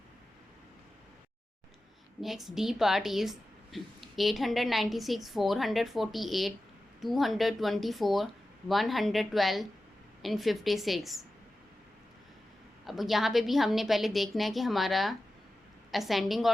Next D part is 896, 448, 224, 112 and 56. अब यहाँ पे भी हमने पहले देखना है कि हमारा असेंडिंग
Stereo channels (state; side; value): normal; both; correlation 0.94